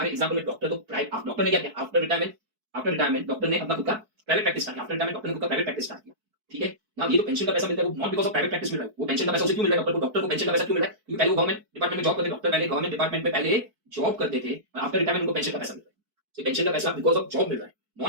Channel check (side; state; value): left; late; 4.6 ms